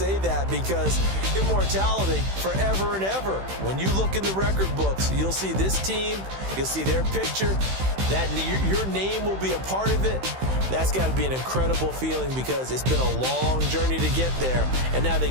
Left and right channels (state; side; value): late; left; 16 ms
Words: that, because immortality forever and ever. When you look in the record books, you'll see this team, you'll see their picture, that your name will be a part of it. That's got to be an incredible feeling, because it's been a long journey to get there, and now they